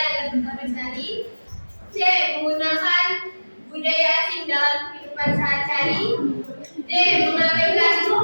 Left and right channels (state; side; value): inverted; both; correlation -1.00